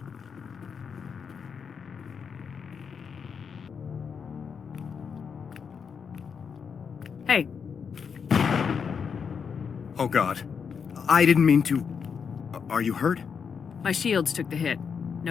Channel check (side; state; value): right; quieter; 6.4 dB